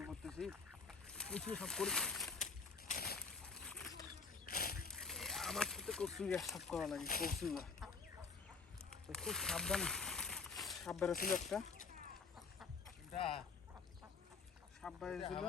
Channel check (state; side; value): quieter; right; 4.7 dB